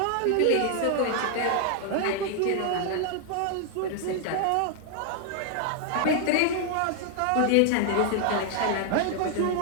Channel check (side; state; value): both; different; correlation 0.00